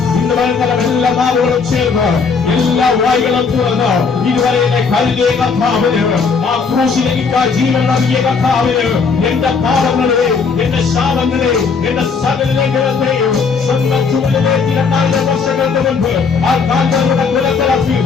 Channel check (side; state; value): right; quieter; 5.1 dB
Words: ഇന്ന് വൈകുന്നേരം എല്ലാ നാവുകളും ചേർന്ന് എല്ലാ വായികളും തുറന്ന് ഇതുവരെ എന്നെ കരുതിയ കർത്താവിന് ആ ക്രൂശിലേക്ക് ജീവൻ നൽകിയ കർത്താവിന് എന്റെ പാപങ്ങളെ എന്റെ ശാപങ്ങളെ എന്റെ സകല ലംഘനത്തെയും സ്വന്തം ചുമലിലേക്ക് 2000 വർഷങ്ങൾക്ക് മുൻപ് ആ കാൽകളുടെ കുലത്തിറക്കി